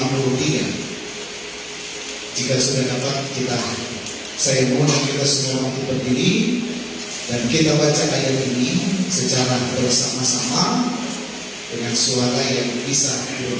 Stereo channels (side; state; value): both; identical; correlation 1.00